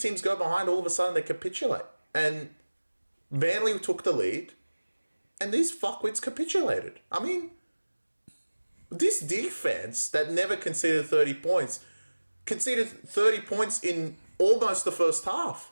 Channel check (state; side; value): inverted; both; correlation -1.00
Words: go behind, all of a sudden they capitulate. And Manly took the lead, and these fuckwits capitulated. I mean, this defense that never conceded 30 points, conceded 30 points in almost the first half.